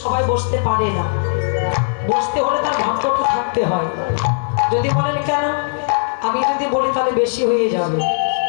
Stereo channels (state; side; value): silent; right; 63 dB below the other